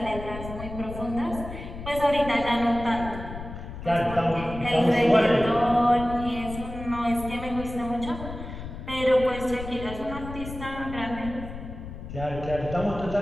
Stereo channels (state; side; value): noise; left; rumble, 10 dB below the sound